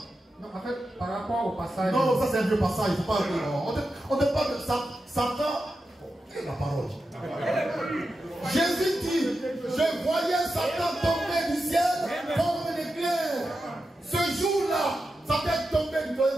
Non, en fait, par rapport au passage. Non, ça c'est un vieux passage. Il faut pas. On ne parle de Satan. Quelle est la parole? Jésus dit, je voyais Satan tomber du ciel comme un éclair. Ce jour-là, Satan est tombé du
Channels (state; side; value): normal; both; correlation 0.90